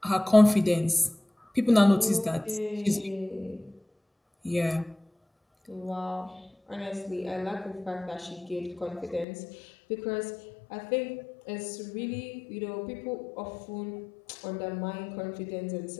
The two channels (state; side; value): drops out; right; at 9.2 s